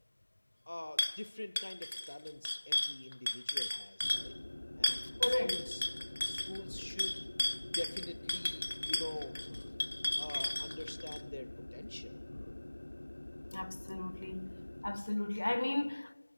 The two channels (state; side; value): inverted; both; correlation -1.00